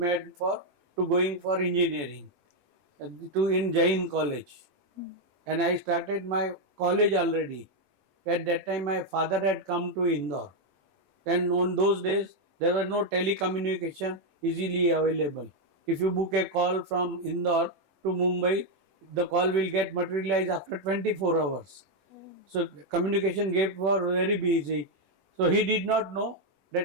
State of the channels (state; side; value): late; left; 21 ms